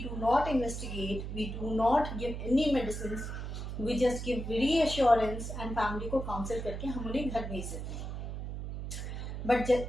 do not investigate, we do not give any medicine, we just give reassurance and family को काउंसिल करके हम उन्हें घर भेज देते हैं.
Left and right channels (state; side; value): noise; right; hum, 6 dB below the sound